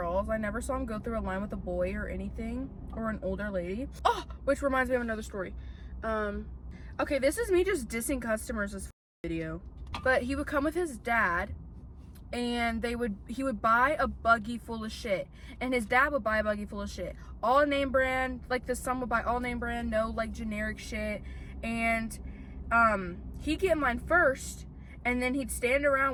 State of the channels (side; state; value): both; identical; correlation 1.00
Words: I never saw him go through a line with a boy or anything, or an older lady. Oh, which reminds me of another story. Okay, this is me just dissing customers this video. But he would come with his dad, and he would buy a buggy full of shit, and his dad would buy a buggy full of shit, all name brand. Like, the son would buy all name brand, no like generic shit. And he'd get mine first, and then he'd stand